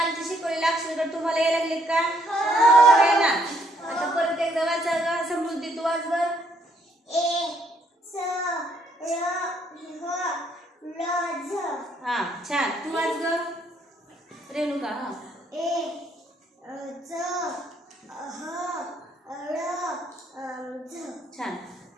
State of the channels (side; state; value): both; normal; correlation 0.69